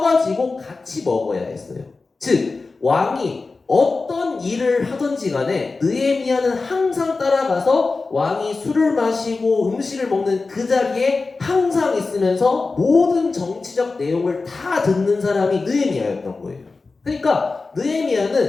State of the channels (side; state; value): right; quieter; 3.9 dB